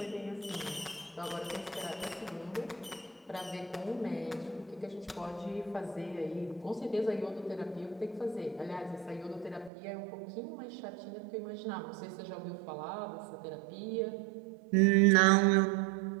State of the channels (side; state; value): left; drops out; at 9.7 s